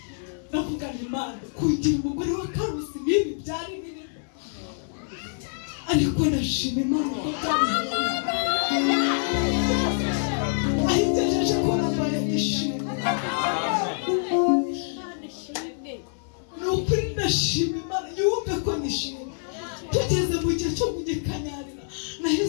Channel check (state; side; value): silent; right; digital silence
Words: ndavuga ni Imana kugira umugore wa Karosi nibi byari biri ariko ndashima Imana ahigejeje ko nabaye ishimwe n'ukuri ndashima Imana yumve ko nishimye. Tugeze mu gihe cyo kugikanyarira